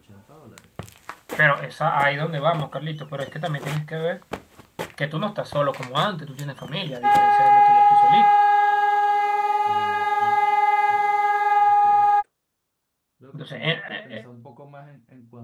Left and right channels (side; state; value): both; identical; correlation 1.00